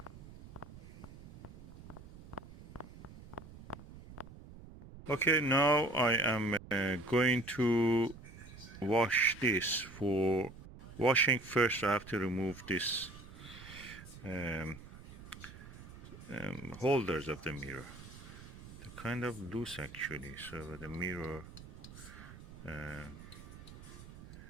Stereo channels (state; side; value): noise; right; rumble, 16 dB below the sound